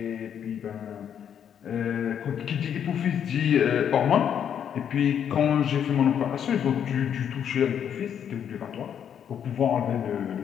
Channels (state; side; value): quieter; right; 8.7 dB